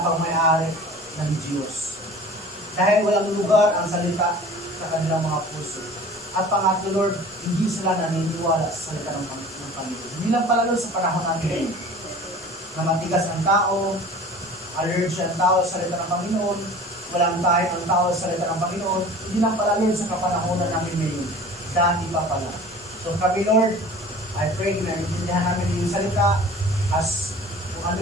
pang may-ari ng Diyos. Dahil walang lugar ang salita sa kanilang mga puso. At pangatlo, Lord, hindi sila naniniwala sa salita ng Panginoon. Hindi lang pala, Lord, sa panahon natin ngayon, na matigas ang tao, allergy ang tao sa salita ng Panginoon, walang tayo ang tao sa salita ng Panginoon, hindi lang pala, Lord, sa kapanahonan namin ngayon. Dati pa pala. So kami, Lord, I pray na naiintindihan namin yung salita as kung ano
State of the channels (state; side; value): normal; both; correlation 0.42